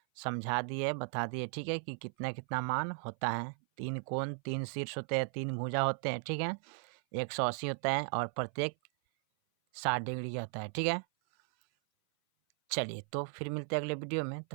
समझा दिए, बता दिए। ठीक है, कि कितना कितना मान होता है। 3 कोण, 3 शीर्ष होते हैं, 3 भुजा होते हैं। ठीक है, 180 होता है और प्रत्येक 60 डिग्री का होता है। ठीक है, चलिए तो फिर मिलते हैं अगले वीडियो में,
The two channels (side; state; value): left; silent; 54 dB below the other